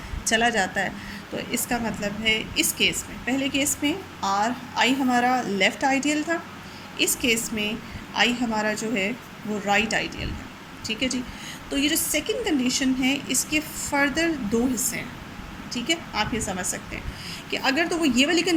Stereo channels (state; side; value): identical; both; correlation 1.00